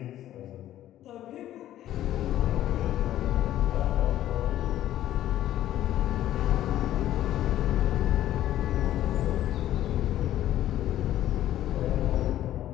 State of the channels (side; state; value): right; quieter; 12.8 dB